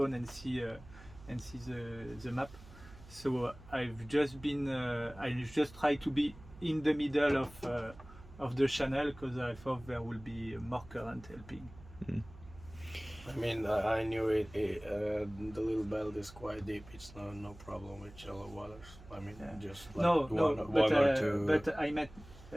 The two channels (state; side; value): noise; right; hum, 19 dB below the sound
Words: and see the map. So I've just tried to be in the middle of the channel, because I thought there will be more current helping. I mean, I knew the Little Belt is quite deep. It's no problem with shallow waters. I mean, just like one or two. But I meant